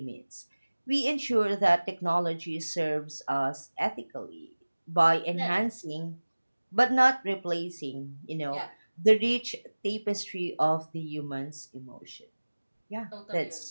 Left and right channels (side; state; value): both; inverted; correlation -1.00